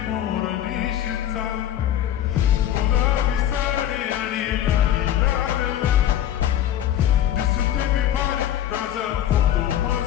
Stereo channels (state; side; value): quieter; right; 11.5 dB